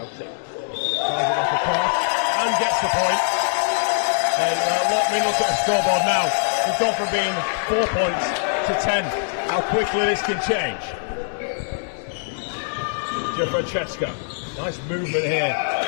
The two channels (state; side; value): silent; right; digital silence